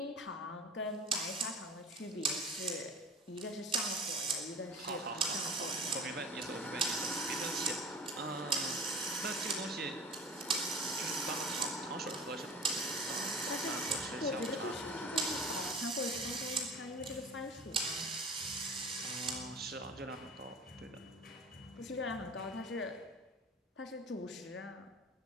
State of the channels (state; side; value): normal; both; correlation 0.39